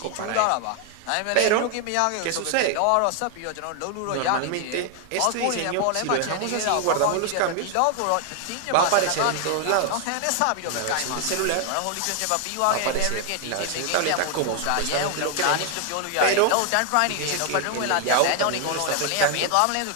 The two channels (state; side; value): different; both; correlation 0.00